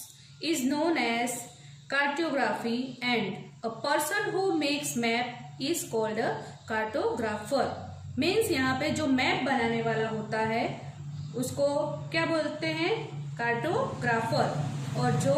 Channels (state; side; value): identical; both; correlation 1.00